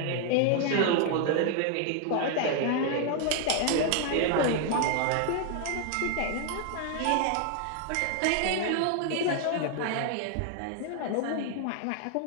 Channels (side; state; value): both; different; correlation 0.00